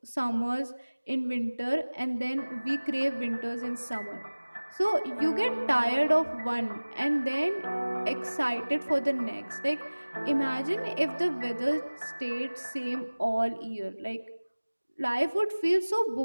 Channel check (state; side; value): inverted; both; correlation -1.00